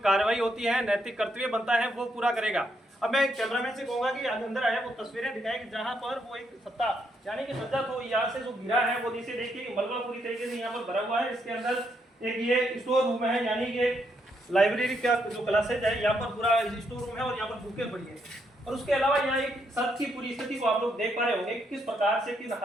कार्रवाई होती है, नैतिक कर्तव्य बनता है, वो पूरा करेगा। अब मैं कैमरामैन से कहूंगा कि अंदर आया वो तस्वीरें दिखाए कि जहां पर वो एक सत्ता यानी कि सज्जा तो यहाँ से जो गिरा है वो नीचे देखिए मलबा पूरी तरीके से यहाँ पर भरा हुआ है। इसके अंदर एक ये स्टोर रूम है, यानी कि लाइब्रेरी का जो क्लासेज है, यहाँ पर पूरा स्टोर रूम है और यहाँ पर बुकें पड़ी है। और उसके अलावा यहाँ एक सड़क की पूरी स्थिति को आप लोग देख पा रहे होंगे किस प्रकार से, किस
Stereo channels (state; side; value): normal; both; correlation 0.76